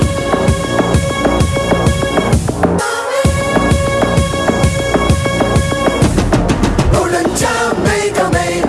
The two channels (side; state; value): both; identical; correlation 1.00